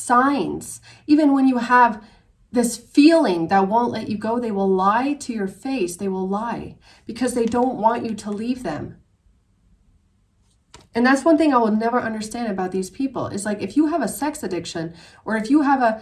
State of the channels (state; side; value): identical; both; correlation 1.00